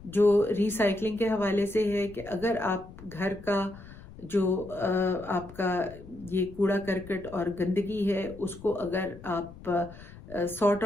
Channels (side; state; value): left; noise; rumble, 18 dB below the sound